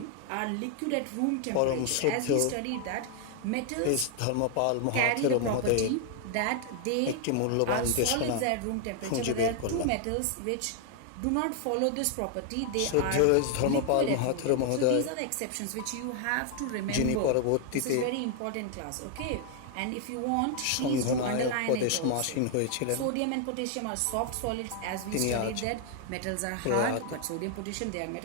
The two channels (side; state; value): both; different; correlation 0.00